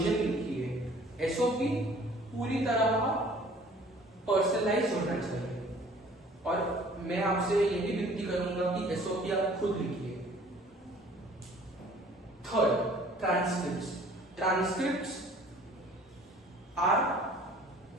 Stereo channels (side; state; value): both; normal; correlation 0.52